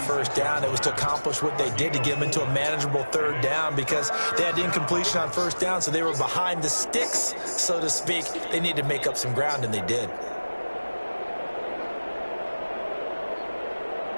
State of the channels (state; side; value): inverted; both; correlation -1.00